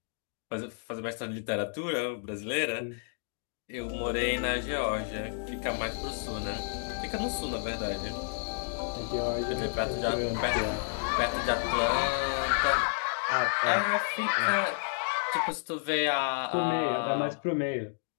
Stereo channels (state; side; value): silent; right; digital silence